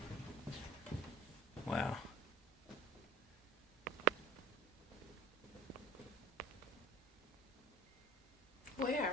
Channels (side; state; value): both; normal; correlation 0.42